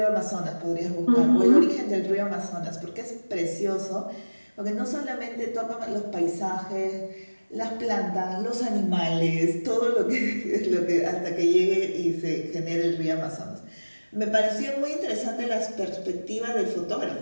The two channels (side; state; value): both; inverted; correlation -1.00